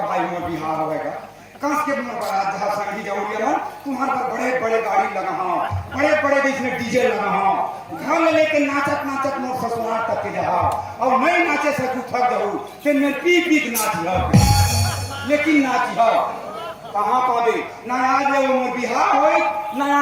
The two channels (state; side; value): identical; both; correlation 1.00